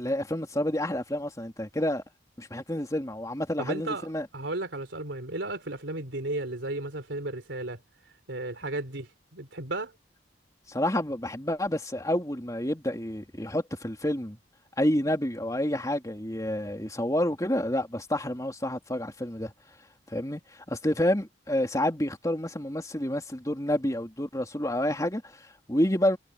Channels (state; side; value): normal; both; correlation 0.72